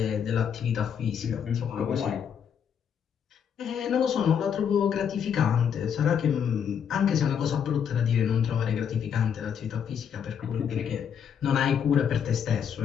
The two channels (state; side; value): quieter; right; 7.9 dB